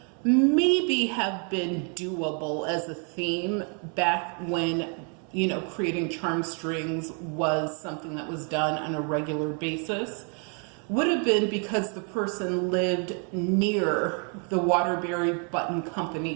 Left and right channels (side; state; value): left; quieter; 39.2 dB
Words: maybe have been doable as a theme back when, you know, creating Charmstrings was something that was done on a regular basis, would have been because the person lived near the Waterbury Button